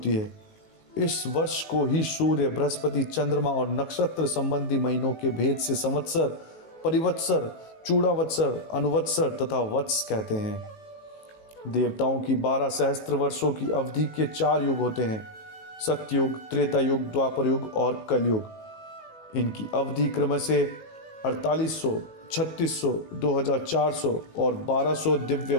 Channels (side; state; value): right; late; 18 ms